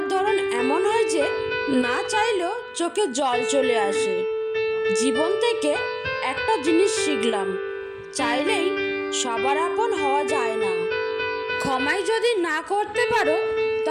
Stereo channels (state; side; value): identical; both; correlation 1.00